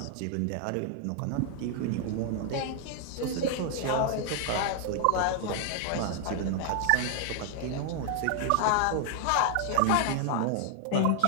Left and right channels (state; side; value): different; both; correlation 0.00